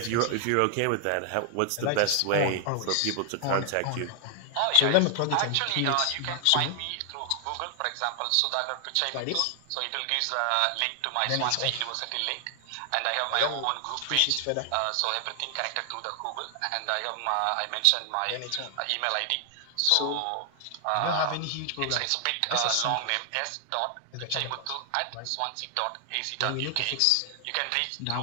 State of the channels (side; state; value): both; different; correlation 0.00